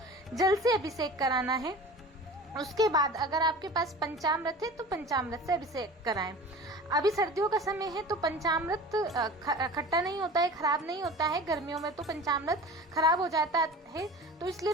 जल से अभिषेक कराना है। उसके बाद अगर आपके पास पंचामृत है तो पंचामृत से अभिषेक कराएं। अभी सर्दियों का समय है तो पंचामृत खट्टा नहीं होता है, खराब नहीं होता है। गर्मियों में तो पंचामृत खराब हो जाता है, तो इसलिए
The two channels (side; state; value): both; normal; correlation 0.38